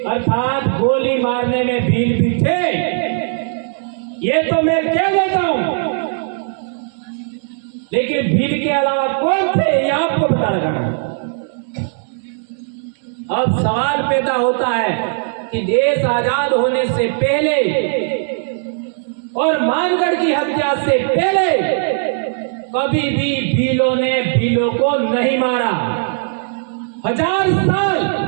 अर्थात गोली मारने में भील भी थे। ये तो मैं कह देता हूं, लेकिन भील के अलावा कौन थे ये आपको पता लगाना। अब सवाल पैदा होता है कि देश आजाद होने से पहले और मानगढ़ की हत्या से पहले कभी भी भीलों ने भीलों को नहीं मारा। 1000 साल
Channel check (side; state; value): left; silent; digital silence